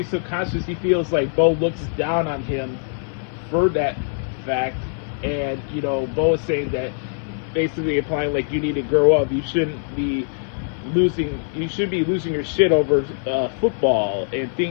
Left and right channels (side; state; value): right; silent; 59 dB below the other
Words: subconsciously, he feels like Beau looks down on him for that fact. And, you know, Beau is saying that, basically implying like you need to grow up. You should be losing your shit over football and